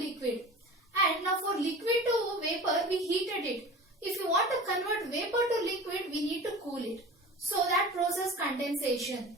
liquid, and now for liquid to vapor, we heated it. If you want to convert vapor to liquid, we need to cool it. So that process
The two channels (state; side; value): normal; both; correlation 0.37